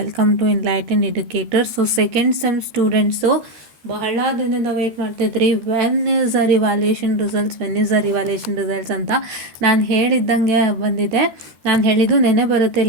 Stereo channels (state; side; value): late; left; 14 ms